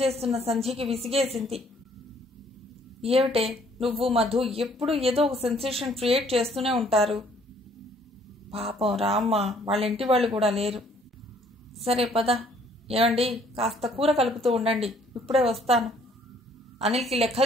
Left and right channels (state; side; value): normal; both; correlation 0.62